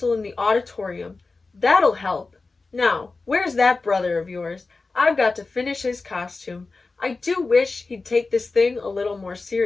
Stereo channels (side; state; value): right; quieter; 3.8 dB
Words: in the auditorium. That'll help. Now, where's that brother of yours? I've got to finish his costume. I do wish he'd take this thing a little more